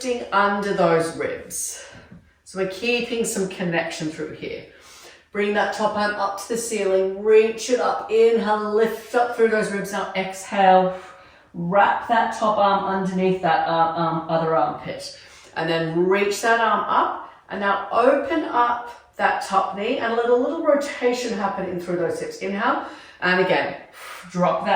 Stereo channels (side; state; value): both; identical; correlation 1.00